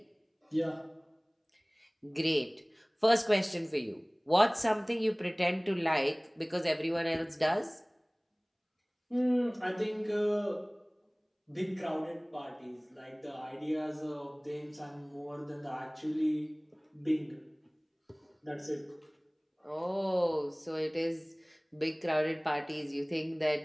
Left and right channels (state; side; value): identical; both; correlation 1.00